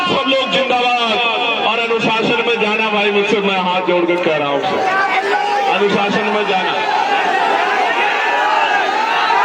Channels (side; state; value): both; identical; correlation 1.00